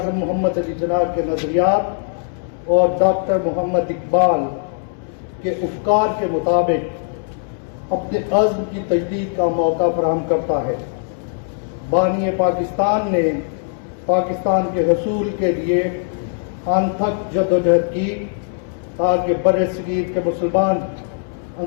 محمد علی جناح کے نظریات اور ڈاکٹر محمد اقبال کے افکار کے مطابق اپنے عزم کی تجدید کا موقع فراہم کرتا ہے۔ بانی پاکستان نے پاکستان کے حصول کے لیے انتھک جدوجہد کی تاکہ بر صغیر کے مسلمان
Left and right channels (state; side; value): silent; right; 66 dB below the other